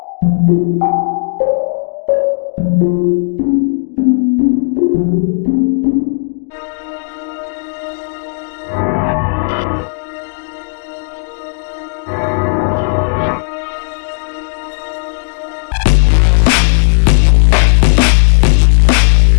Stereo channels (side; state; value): right; silent; digital silence